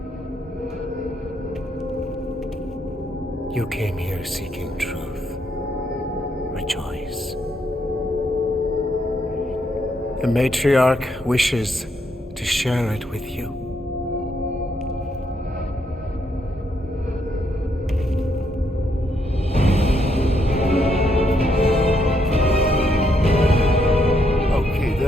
You came here seeking truth. Rejoice. The matriarch wishes to share it with you. Okay,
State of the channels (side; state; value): both; normal; correlation 0.75